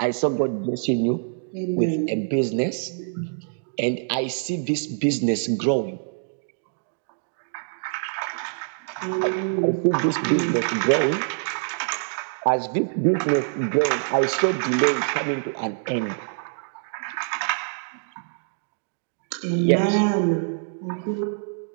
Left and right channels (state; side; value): silent; left; digital silence